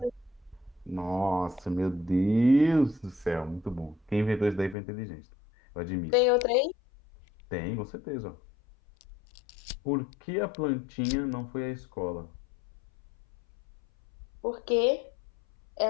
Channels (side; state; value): right; drops out; at 4.8 s